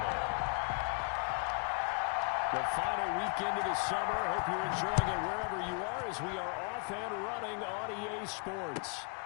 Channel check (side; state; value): right; quieter; 37.3 dB